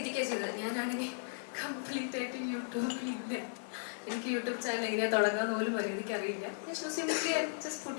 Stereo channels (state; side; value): silent; right; digital silence